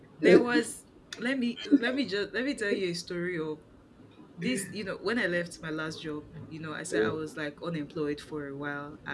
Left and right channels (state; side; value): identical; both; correlation 1.00